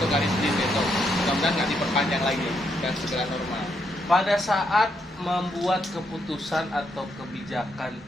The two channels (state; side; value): normal; both; correlation 0.77